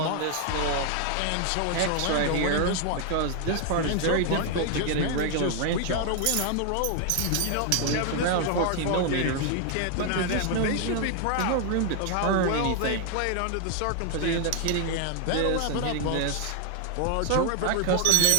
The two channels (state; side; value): different; both; correlation 0.00